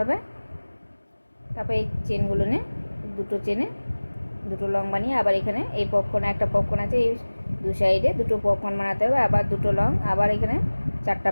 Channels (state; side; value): inverted; both; correlation -1.00